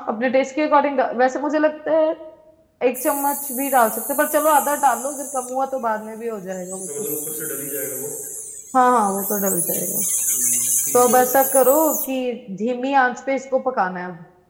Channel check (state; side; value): identical; both; correlation 1.00